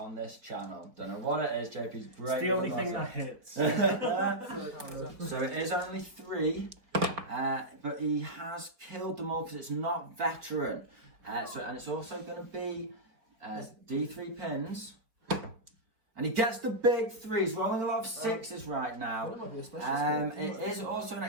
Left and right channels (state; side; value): late; left; 4.7 ms